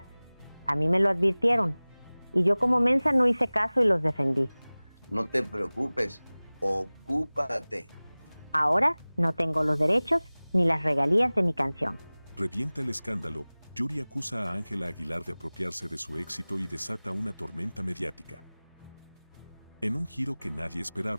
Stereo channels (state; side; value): inverted; both; correlation -1.00